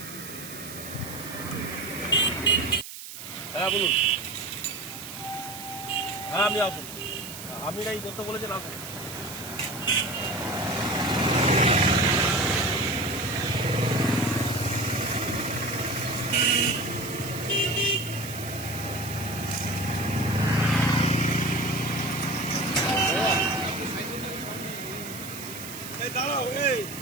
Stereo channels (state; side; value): noise; right; hiss, 11 dB below the sound